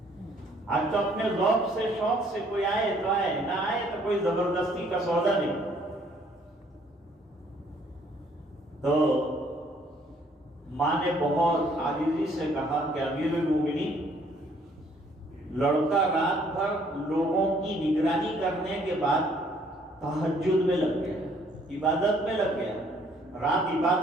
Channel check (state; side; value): normal; both; correlation 0.63